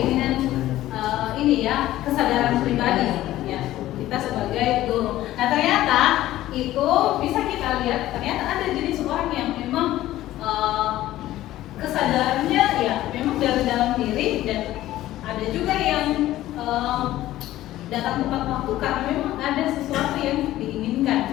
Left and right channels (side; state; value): right; quieter; 14.8 dB